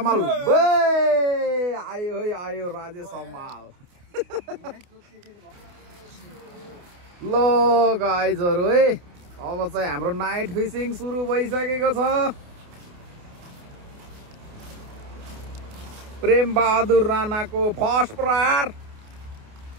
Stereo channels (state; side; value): late; left; 28 ms